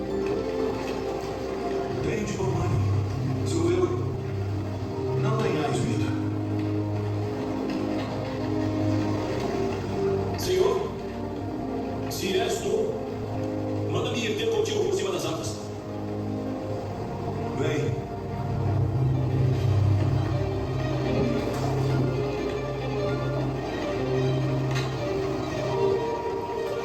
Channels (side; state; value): both; identical; correlation 1.00